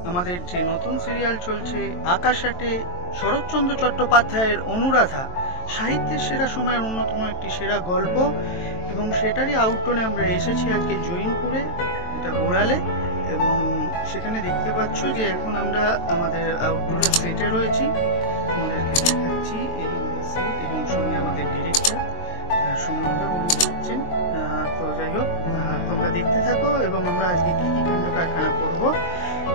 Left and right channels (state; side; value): late; right; 23 ms